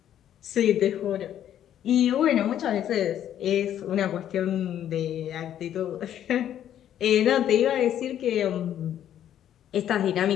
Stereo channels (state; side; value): quieter; right; 10.7 dB